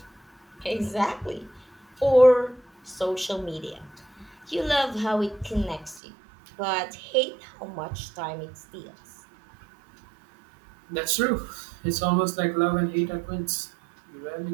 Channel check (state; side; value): drops out; left; at 6.0 s